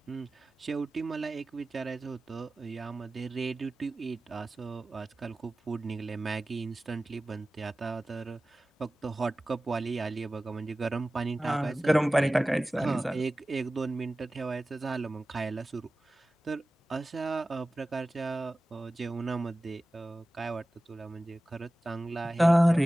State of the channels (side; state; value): both; normal; correlation 0.96